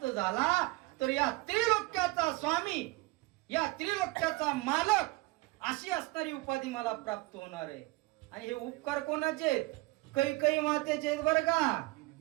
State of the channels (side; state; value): left; quieter; 22.0 dB